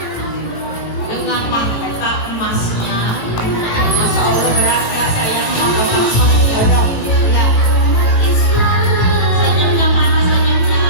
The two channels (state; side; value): late; right; 18 ms